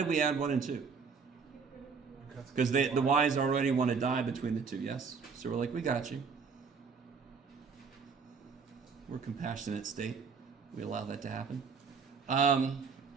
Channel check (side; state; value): left; quieter; 5.6 dB